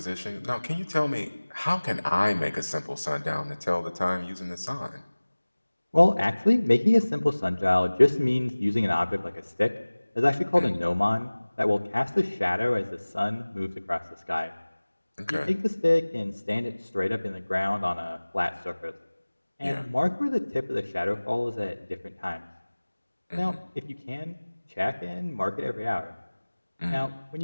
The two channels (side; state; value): both; inverted; correlation -1.00